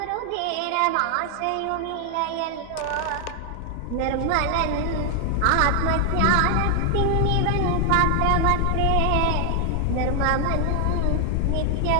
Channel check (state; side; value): different; both; correlation 0.00